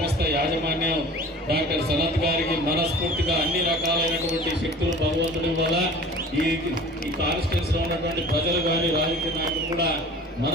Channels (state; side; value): normal; both; correlation 0.43